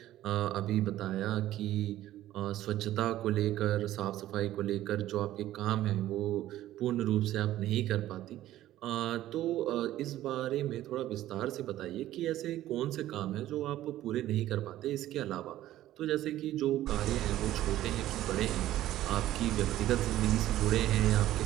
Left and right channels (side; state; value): left; quieter; 14.0 dB